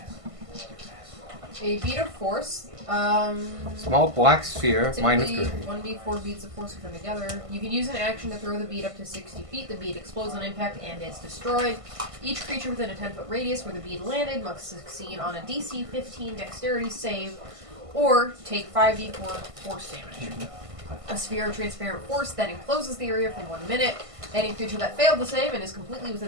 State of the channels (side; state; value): left; late; 1.5 ms